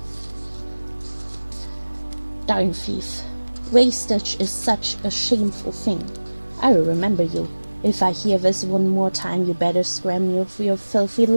Darn thief. Wastage is such a shameful thing. I will remember you. If I hear this one more time, you better scram for your filthy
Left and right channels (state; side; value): inverted; both; correlation -1.00